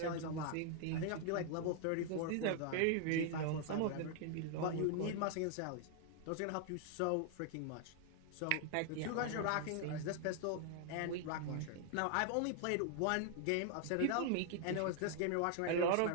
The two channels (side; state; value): both; different; correlation 0.00